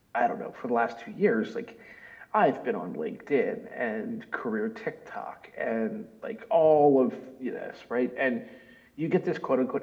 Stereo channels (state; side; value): identical; both; correlation 1.00